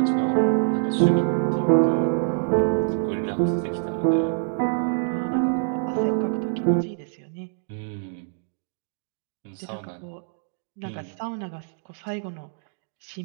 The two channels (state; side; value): silent; left; digital silence